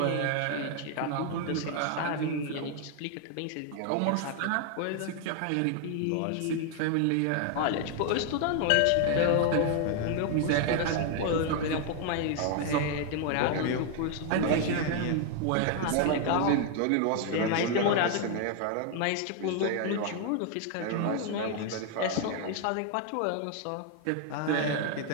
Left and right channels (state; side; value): different; both; correlation 0.00